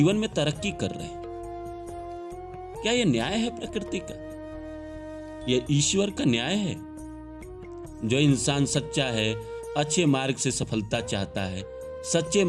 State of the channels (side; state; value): both; identical; correlation 1.00